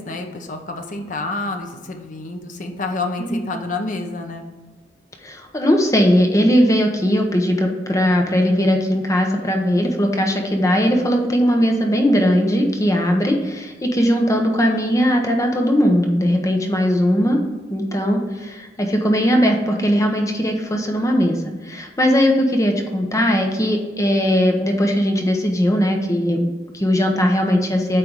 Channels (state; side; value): normal; both; correlation 0.82